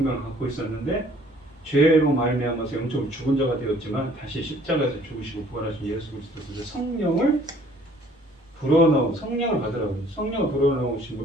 갖고 있었는데 죄로 말미암아서 영적으로 죽은 자가 되었지만 다시 십자가에서 죽으시고 부활하신 예수 그리스도께서 성령을 받으라고 해요. 성령을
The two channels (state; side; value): normal; both; correlation 0.57